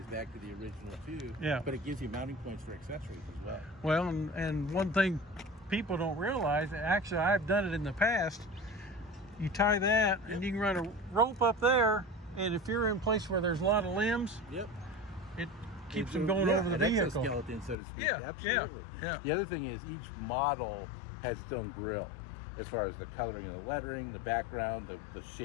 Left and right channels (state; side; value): drops out; right; at 17.8 s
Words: back to the original too. Yeah. But it gives you mounting points for accessories as well. Well, and one thing people don't realize, actually I've done it in the past, you tie that and you can run a rope up there, and if you're in a place where there's a lot of limbs, Yep. it keeps them going over the an vehicle. exoskeleton, so to speak. Yeah, Absolutely. yeah. The other thing is each model has its own grille. As far as the coloring of the lettering, the background, the